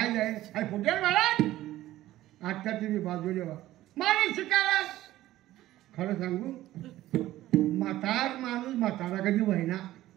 जाय अरे फुटेल महाराज आत्या तुम्ही बाजू देवा मारे शिकायला खरं सांगू म्हातार माणूस म्हातारा कधी व्हायना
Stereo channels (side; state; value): left; quieter; 15.1 dB